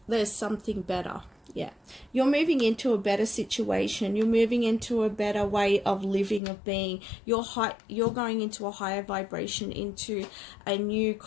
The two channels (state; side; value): drops out; right; at 6.4 s